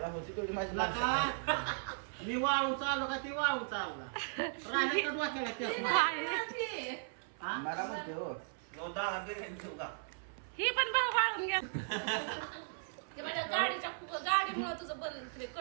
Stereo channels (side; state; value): left; silent; 53 dB below the other